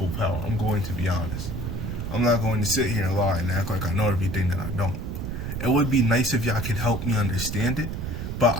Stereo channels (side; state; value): right; noise; rumble, 4 dB below the sound